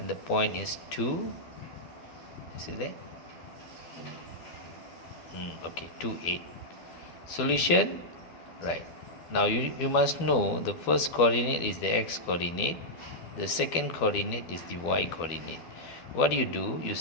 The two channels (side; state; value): right; late; 12 ms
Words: the point is 2. You see that? Okay, 2, 8. Solution, right. Now you must know the first coordinate is the x coordinate, the second coordinate is the y coordinate. What do? You